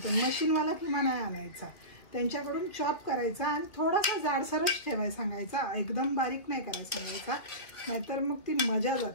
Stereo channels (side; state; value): right; late; 2.4 ms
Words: मशीनवाला खिमा नाही आणायचा, त्यांच्याकडून चॉप करायचा आणि थोडासा जाडसरच ठेवायला सांगायचा, एकदम बारीक नाही करायला सांगायचा, नाहीतर मग ती मजा